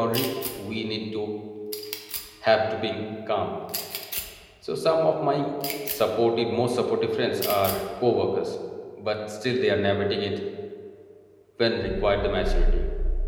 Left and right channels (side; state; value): both; identical; correlation 1.00